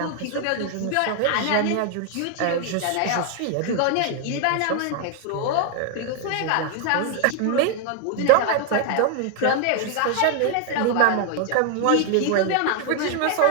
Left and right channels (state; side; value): different; both; correlation 0.00